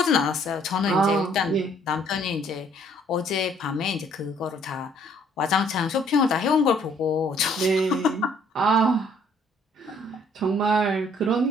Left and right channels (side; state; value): both; normal; correlation 0.62